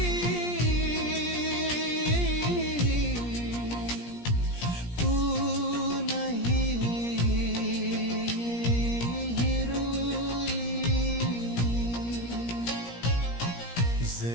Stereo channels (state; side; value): late; right; 17 ms